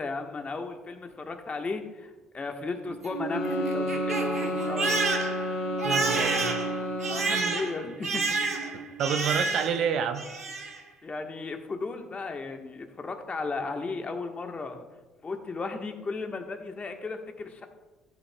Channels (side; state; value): both; normal; correlation 0.60